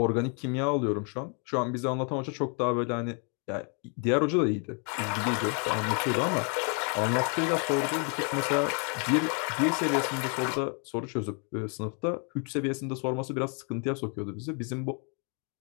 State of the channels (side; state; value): right; quieter; 38.7 dB